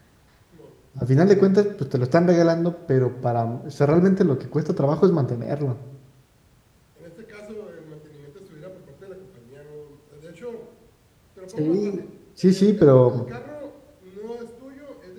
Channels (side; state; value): both; identical; correlation 1.00